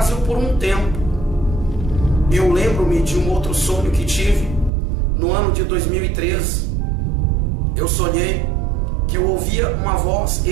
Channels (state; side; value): drops out; left; at 4.7 s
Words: por um tempo. Eu lembro-me de um outro sonho que tive no ano de 2013. Eu sonhei que eu ouvia uma voz